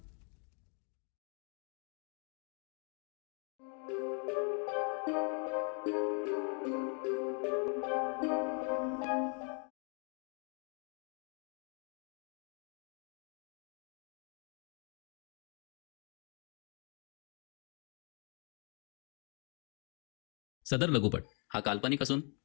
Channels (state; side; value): quieter; right; 36.6 dB